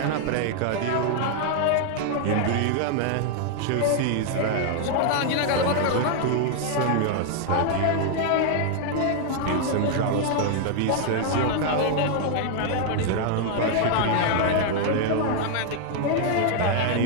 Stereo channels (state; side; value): different; both; correlation 0.00